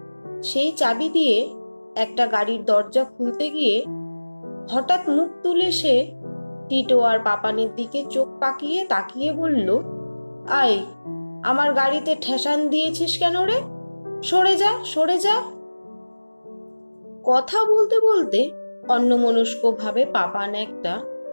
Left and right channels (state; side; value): inverted; both; correlation -1.00